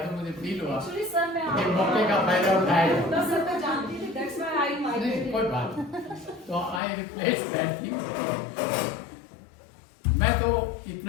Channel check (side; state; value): right; drops out; at 6.8 s